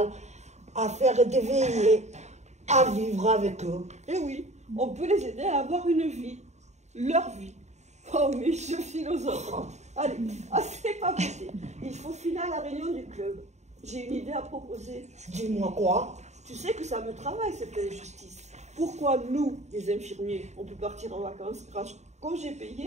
à faire des veillées, à vivre avec eux. Et oui, on peut les aider à avoir une vie, leur vie. Oh, mais je philosophe. Allez, c'est pas possible. Il faut filer à la réunion du club. J'ai une idée à proposer. Dis-moi quoi? Tu sais que ça me travaille cette injustice. Pourquoi nous, les infirmiers, on peut partir en vacances grâce au congé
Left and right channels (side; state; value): left; late; 0.33 ms